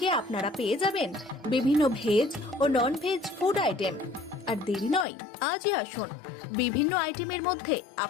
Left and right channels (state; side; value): drops out; right; at 5.1 s